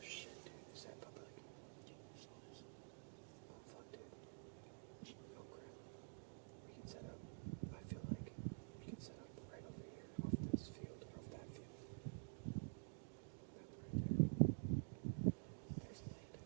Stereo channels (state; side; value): silent; left; digital silence